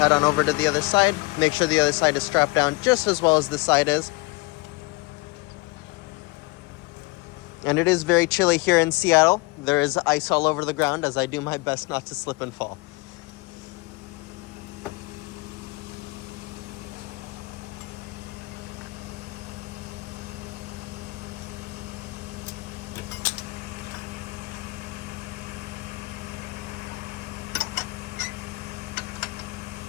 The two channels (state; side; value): quieter; right; 24.3 dB